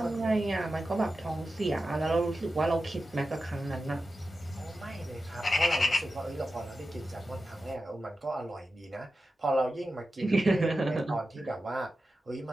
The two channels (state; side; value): normal; both; correlation 0.92